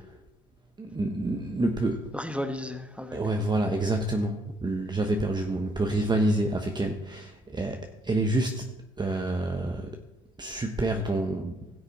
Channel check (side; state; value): both; normal; correlation 0.72